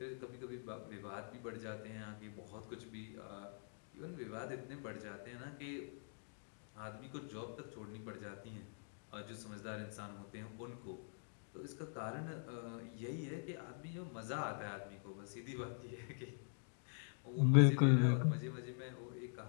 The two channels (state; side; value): silent; right; digital silence